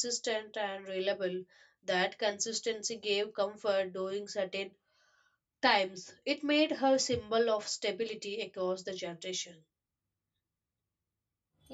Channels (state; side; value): identical; both; correlation 1.00